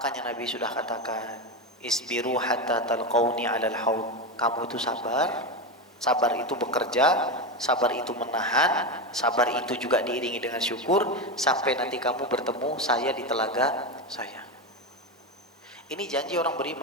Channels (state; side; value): normal; both; correlation 0.15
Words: Nabi sudah katakan, isbiru hatta talqauni 'alal haud. Kamu itu sabar. Sabar itu bekerja, sabar itu menahan, sabar itu juga diiringi dengan syukur sampai nanti kamu bertemu saya di telaga saya. Ini janji orang